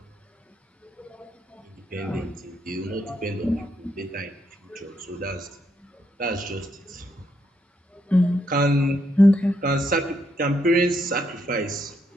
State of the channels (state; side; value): normal; both; correlation 0.77